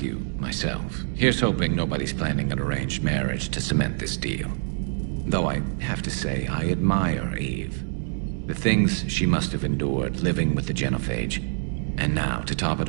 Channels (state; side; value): silent; left; digital silence